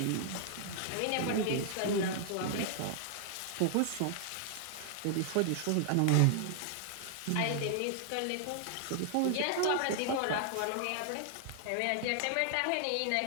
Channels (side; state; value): both; different; correlation 0.00